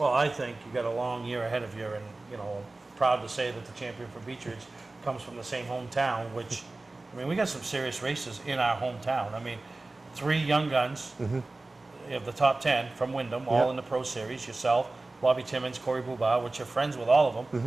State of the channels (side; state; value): left; quieter; 3.1 dB